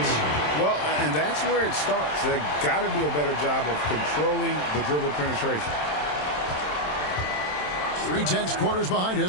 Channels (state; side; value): late; right; 27 ms